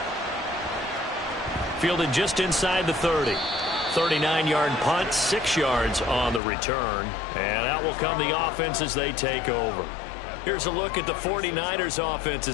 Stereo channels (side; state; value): right; drops out; at 6.4 s